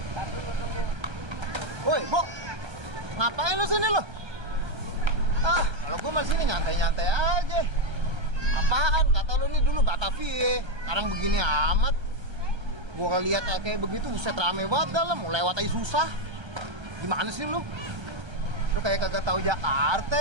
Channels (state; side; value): late; left; 1.3 ms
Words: Woi, Bo. Ngapain lu sini lo? Ah, kalau gua masih sini nyantai-nyantai aja. Apaan? Kata lu nih dulu Batavia. Sekarang begini amat. Gua lihat kayak begitu, buset rame banget dalam, mau lewat aja susah. Gimana sih lu? Lu kayak kagak tahu